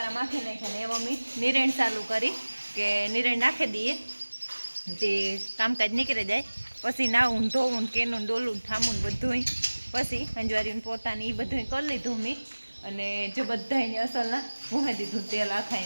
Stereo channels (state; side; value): inverted; both; correlation -1.00